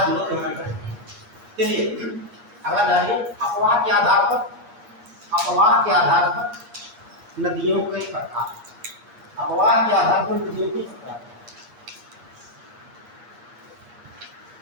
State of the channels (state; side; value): late; left; 8.4 ms